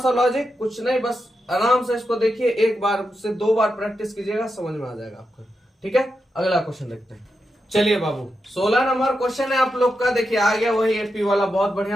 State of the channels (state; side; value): normal; both; correlation 0.87